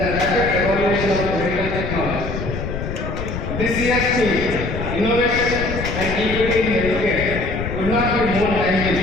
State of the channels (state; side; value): noise; left; rumble, 5 dB below the sound